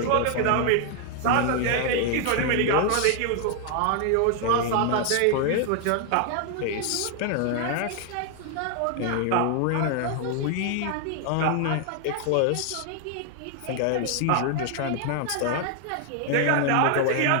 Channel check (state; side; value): different; both; correlation 0.00